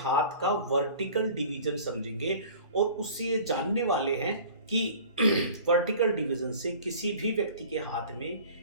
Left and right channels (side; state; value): both; inverted; correlation -0.45